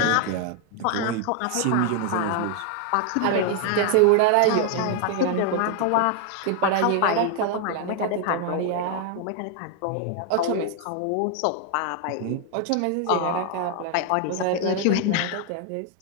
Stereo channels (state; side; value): different; both; correlation 0.00